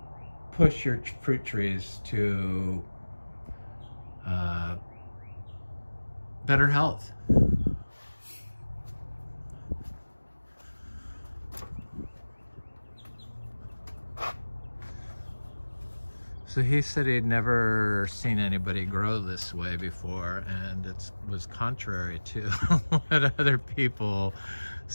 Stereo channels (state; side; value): inverted; both; correlation -1.00